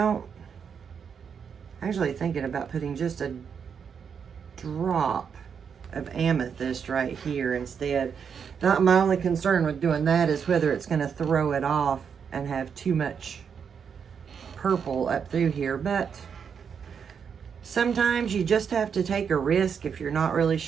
actually thinking about putting just a drop of amethyst right here instead. My only concern with doing that is whether it's going to throw it off and have too much purple up through here. But sometimes you just have to take a risk if you're not really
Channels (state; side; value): quieter; left; 6.9 dB